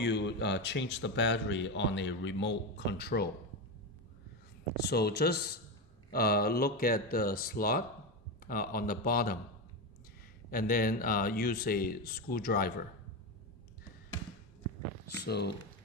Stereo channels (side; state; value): both; normal; correlation 0.14